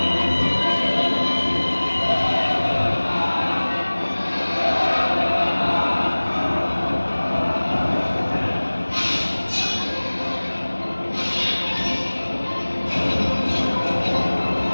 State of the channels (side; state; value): both; inverted; correlation -1.00